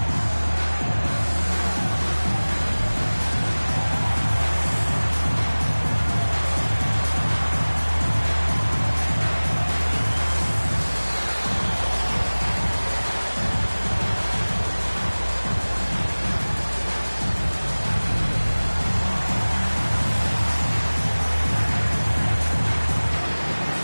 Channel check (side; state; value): both; inverted; correlation -1.00